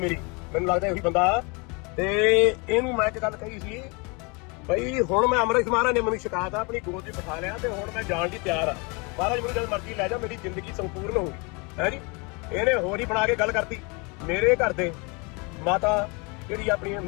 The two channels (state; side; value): quieter; right; 30.1 dB